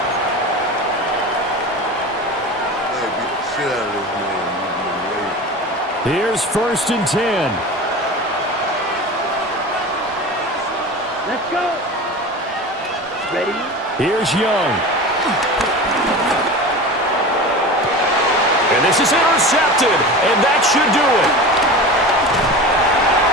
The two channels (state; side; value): normal; both; correlation 0.31